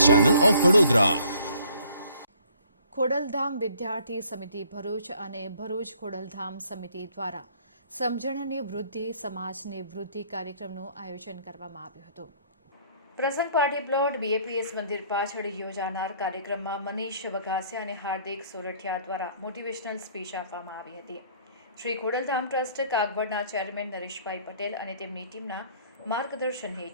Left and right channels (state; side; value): inverted; both; correlation -0.59